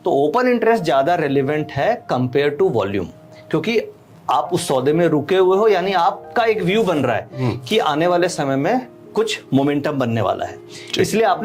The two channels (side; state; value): both; identical; correlation 1.00